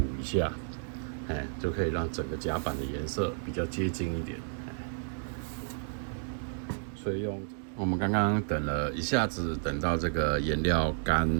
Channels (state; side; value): silent; left; 57 dB below the other